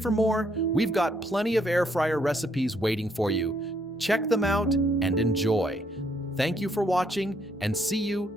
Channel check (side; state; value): both; normal; correlation 0.71